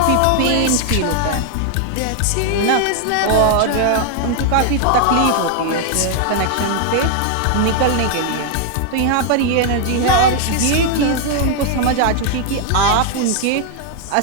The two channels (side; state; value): both; different; correlation 0.00